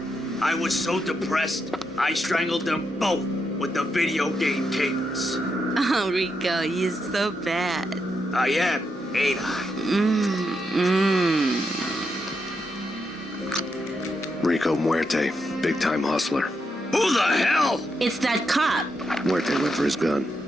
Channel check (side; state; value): both; normal; correlation 0.82